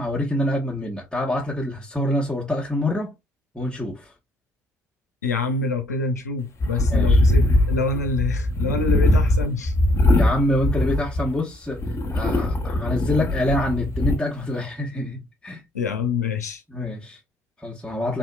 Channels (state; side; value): normal; both; correlation 0.66